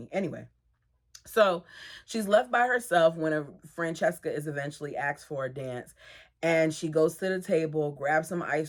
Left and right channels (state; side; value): identical; both; correlation 1.00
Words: Anyway, so she's left by herself when Francesca is eventually asked for a dance, and she goes to the table, grabs some